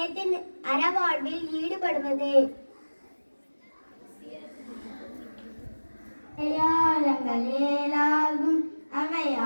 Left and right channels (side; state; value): both; inverted; correlation -1.00